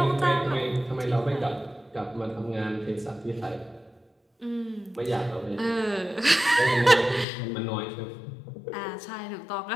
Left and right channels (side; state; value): right; drops out; at 7.2 s